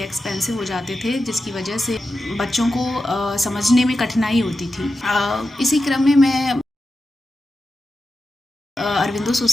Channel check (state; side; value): normal; both; correlation 0.90